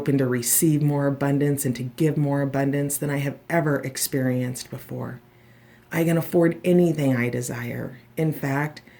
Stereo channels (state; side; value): identical; both; correlation 1.00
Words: to receive more abundance and to give more abundance than I have ever experienced before. I can afford anything I desire. In fact,